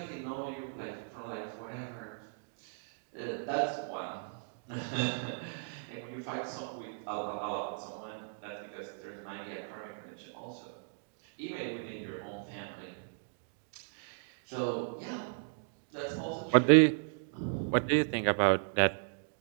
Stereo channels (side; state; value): left; silent; digital silence